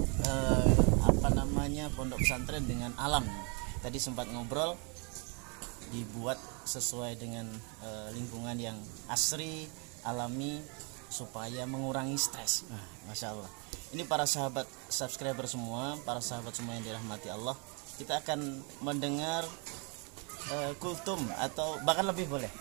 pondok pesantren dengan alam. Tadi sempat ngobrol, dibuat sesuai dengan lingkungan yang asri, alami, supaya mengurangi stres. Nah, Masya Allah. Ini para sahabat subscriber semua, para sahabat semua yang dirahmati Allah, kita akan mendengar kultum atau bahkan lebih boleh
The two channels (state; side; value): quieter; left; 34.5 dB